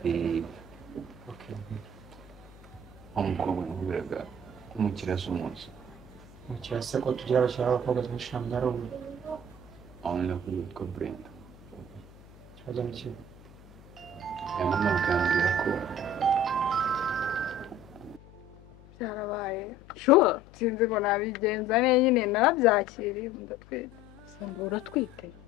umukobwa nkubiraga umukiriya z'umunsi umukiriya se ko tugira abakiriya b'abakobwa benshi ntabwo ari umwe aho ni kuri witwa Brenda ikibazo ni kimwe mama akambwira ko byarabaye sure sinzi ngo nabigenza neza nyine narabyakiriye ndatwite samba uratwite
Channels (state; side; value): noise; left; hum, 22 dB below the sound